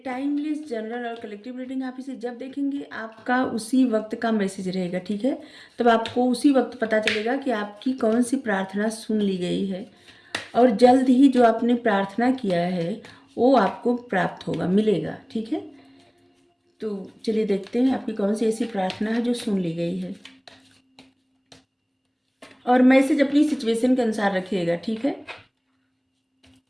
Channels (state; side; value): identical; both; correlation 1.00